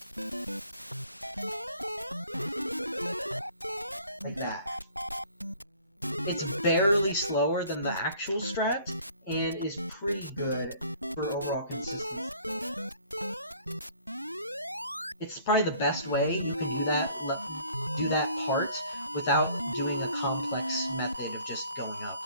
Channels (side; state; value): both; inverted; correlation -0.55